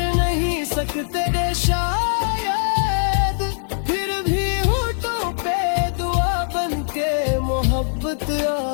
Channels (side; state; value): right; silent; digital silence